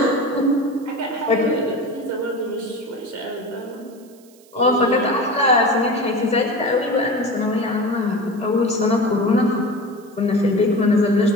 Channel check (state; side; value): noise; right; hiss, 28 dB below the sound